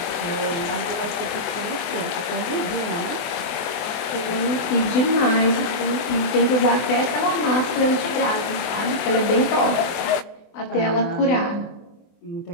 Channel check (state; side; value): late; right; 24 ms